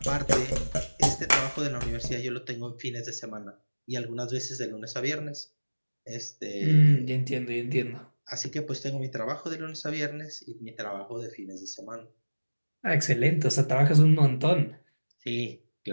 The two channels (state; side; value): inverted; both; correlation -1.00